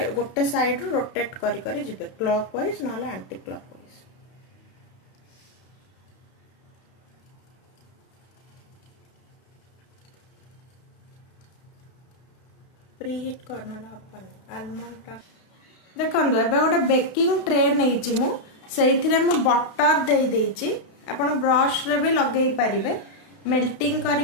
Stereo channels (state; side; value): late; right; 32 ms